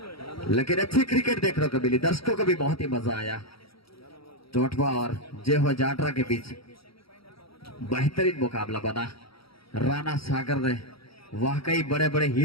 लेकिन अच्छी क्रिकेट देखने को मिली। दर्शकों को भी बहुत ही मजा आया। चोटवा और जय हो जाडरा के बीच बेहतरीन मुकाबला बना। राणा सागर ने वाकई बड़े बड़े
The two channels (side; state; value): right; late; 0.75 ms